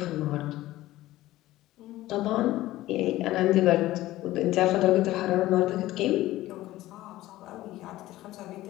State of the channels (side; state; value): right; quieter; 16.1 dB